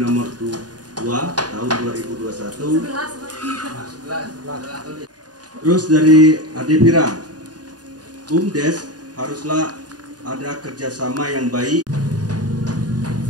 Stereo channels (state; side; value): late; left; 0.69 ms